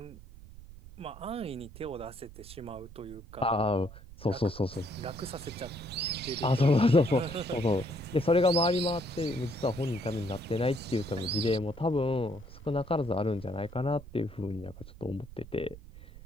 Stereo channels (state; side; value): noise; right; rumble, 17 dB below the sound